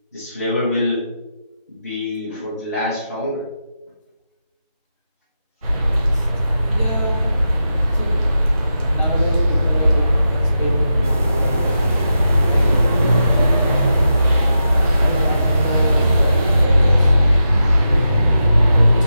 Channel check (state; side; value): inverted; both; correlation -0.88